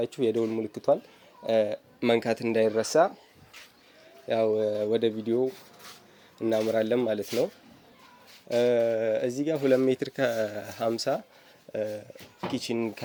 የደውል ምልክቷን መንካት እንዳይረሳ። ያው ወደ ቪዲዮ እናምራለን ማለት ነው። እዚህ ጋር 2 ሜትር ከ50 ኪችን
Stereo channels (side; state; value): both; identical; correlation 1.00